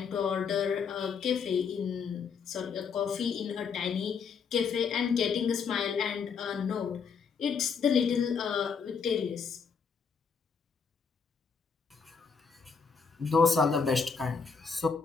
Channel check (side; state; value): right; quieter; 5.8 dB